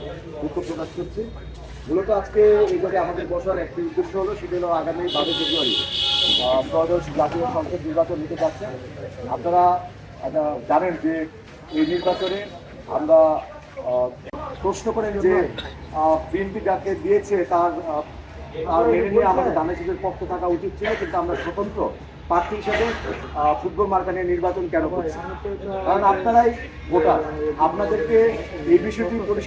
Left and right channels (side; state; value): both; identical; correlation 1.00